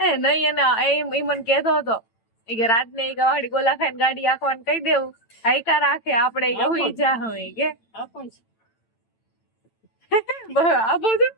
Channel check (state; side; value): late; right; 8.9 ms